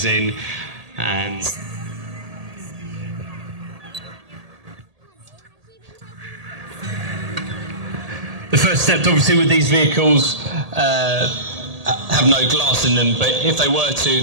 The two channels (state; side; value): late; left; 1.8 ms